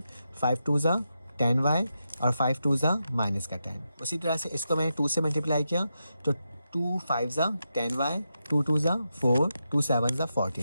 5 2 ज़ा 10y और 5 2 ज़ा -10। उसी तरह से इसको मैंने 2 से मल्टीप्लाई किया, तो 2 5 ज़ा 10y, 2 2 ज़ा 4, 2 7 ज़ा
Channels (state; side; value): inverted; both; correlation -0.87